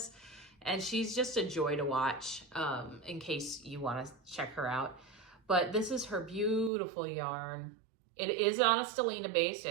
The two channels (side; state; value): left; drops out; at 6.7 s